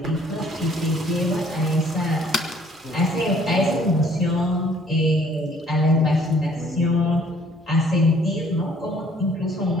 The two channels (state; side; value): normal; both; correlation 0.59